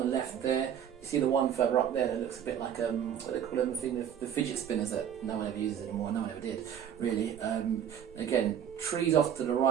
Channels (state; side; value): quieter; left; 9.2 dB